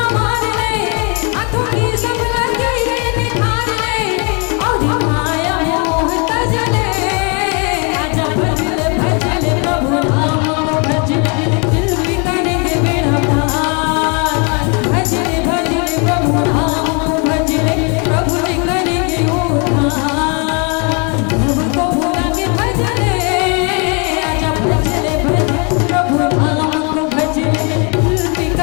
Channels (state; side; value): quieter; right; 34.2 dB